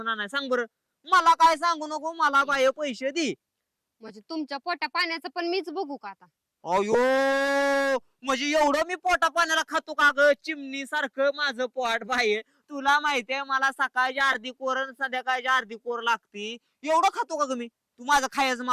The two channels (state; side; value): identical; both; correlation 1.00